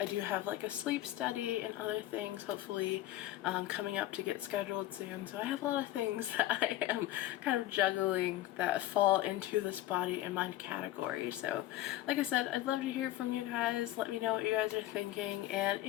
I do have like a sleep study and other things hopefully coming up to get scheduled soon, so I have a lot of things that I am kind of juggling that fall into this body and mind category. So like I said, I'd love to hear from you guys. Let me know what you guys are thinking, and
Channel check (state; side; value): quieter; right; 14.8 dB